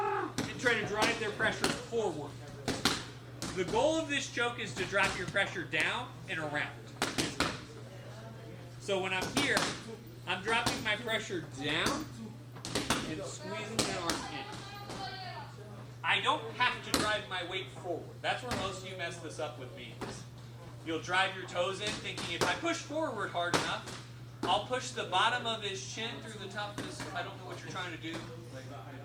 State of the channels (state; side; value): identical; both; correlation 1.00